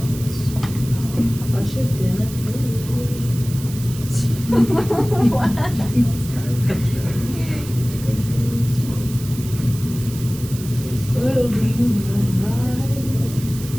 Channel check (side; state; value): right; noise; hiss, 14 dB below the sound